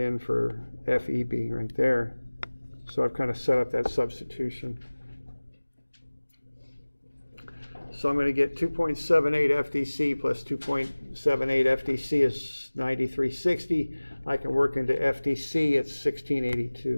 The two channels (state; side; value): inverted; both; correlation -1.00